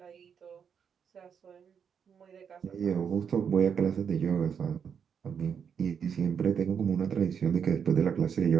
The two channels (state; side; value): quieter; left; 7.2 dB